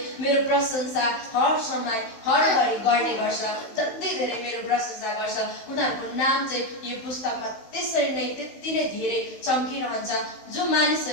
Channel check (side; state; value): right; late; 16 ms